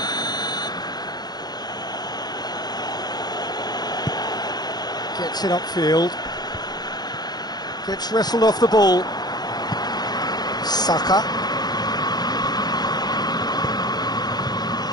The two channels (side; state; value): right; late; 0.20 ms